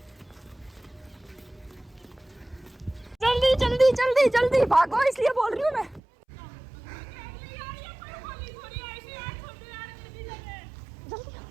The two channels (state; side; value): drops out; left; at 6.0 s